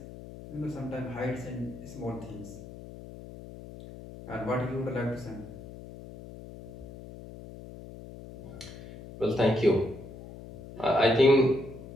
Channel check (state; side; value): noise; left; hum, 14 dB below the sound